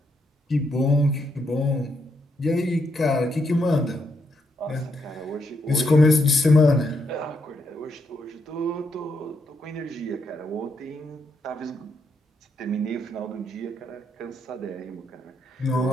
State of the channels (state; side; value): normal; both; correlation 0.78